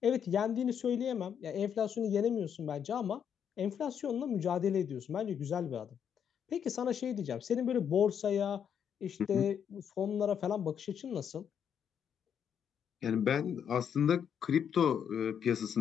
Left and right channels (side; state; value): right; quieter; 8.1 dB